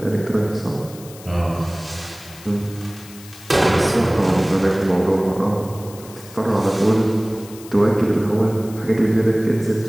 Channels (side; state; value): left; noise; hiss, 19 dB below the sound